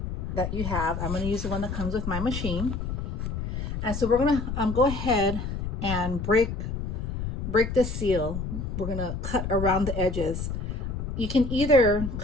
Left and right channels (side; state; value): left; noise; rumble, 4 dB below the sound